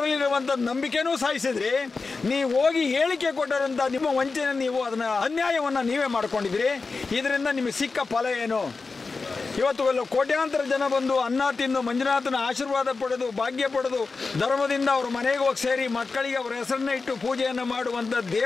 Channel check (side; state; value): right; quieter; 4.2 dB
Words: ನಂಬಿಕೆನೂ ಸಾಯಿಸಿದ್ರಿ. ನೀವು ಹೋಗಿ ಹೇಳಿಕೆ ಕೊಟ್ಟರಂಥ ನಿಮ್ಮ ವಂಚನೆ, ನೀವು ಅದನ್ನು ಅನ್ಯಾಯವನ್ನು ನೀವೇ ಮಾಡ್ಕೊಂಡಿದ್ರಿ. ಇದರಿಂದ ನಿಮಗೆ ಸಿಕ್ಕ ಫಲ ಏನು? ಇವತ್ತು ಕೋಟ್ಯಾಂತರ ಜನ ಬಂದು ಅನ್ನ ತಿಂದು ಮಂಜುನಾಥನ ಆಶೀರ್ವಾದ ಪಡೆದು ಭಾಗ್ಯ ಪಡೆದು ಧರ್ಮದಿಂದ ಅವ್ರ ಮನೆಗೆ ಹೋಗಿ ಸೇರಿ ಮಕ್ಕಳಿಗೆ ಅವರ ಹೆಸರನ್ನ ಇಟ್ಟು ಪೂಜೆಯನ್ನು ಮಾಡುವಂಥ